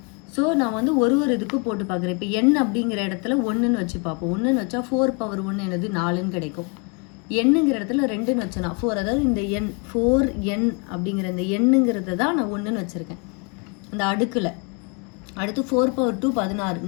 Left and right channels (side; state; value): right; quieter; 32.7 dB